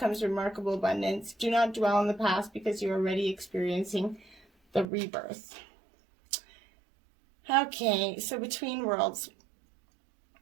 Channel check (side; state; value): left; drops out; at 4.9 s